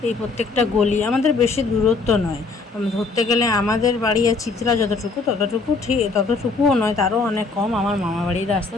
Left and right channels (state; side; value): quieter; right; 4.1 dB